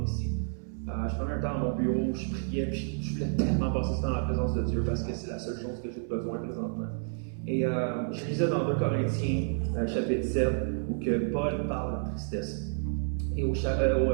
ici. Je prenais un temps dans mon bureau, je priais, puis je voulais tellement passer ce temps dans la présence de Dieu parce que c'est la seule chose que j'ai besoin présentement. Et je lisais dans 2 Corinthiens, chapitre 7, où que Paul parle de tristesse. Et au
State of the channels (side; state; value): left; silent; 58 dB below the other